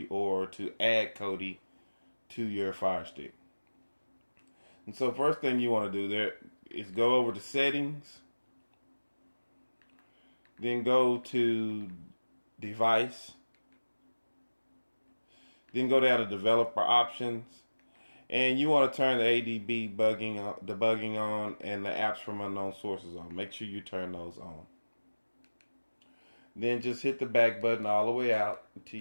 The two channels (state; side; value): inverted; both; correlation -1.00